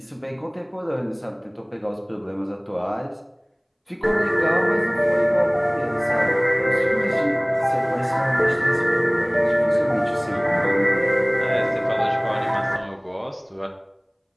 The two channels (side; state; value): both; identical; correlation 1.00